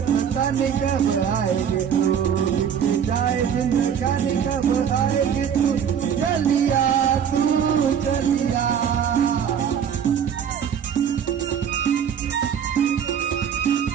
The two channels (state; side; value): quieter; left; 8.1 dB